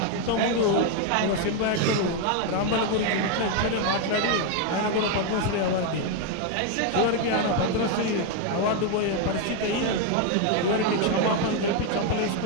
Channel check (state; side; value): different; both; correlation 0.01